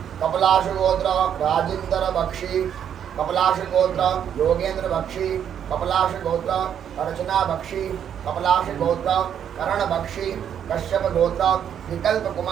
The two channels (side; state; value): left; quieter; 9.0 dB